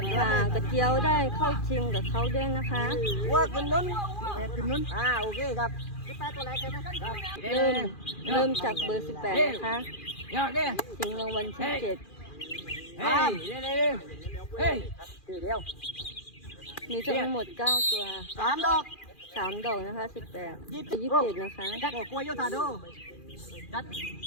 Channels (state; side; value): late; right; 2.4 ms